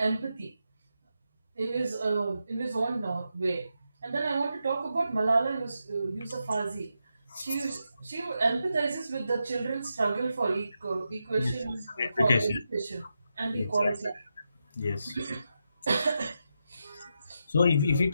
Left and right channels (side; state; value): both; inverted; correlation -0.86